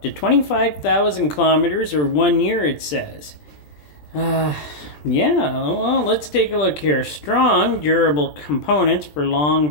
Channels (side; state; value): right; late; 20 ms